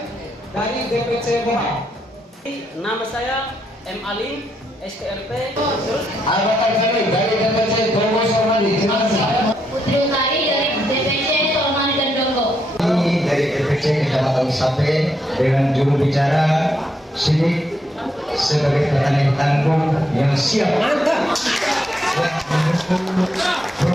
dari DPC Boha. Nama saya M. Ali, STRP. Anggota kami dari DPC Dongo Sormadi. Putri Utari dari DPC Sormadi dan Dongo. Ini dari DPC Kecamatan Sape dengan juru bicara Sidik sebagai petani tangguh yang siap mantap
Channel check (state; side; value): normal; both; correlation 0.78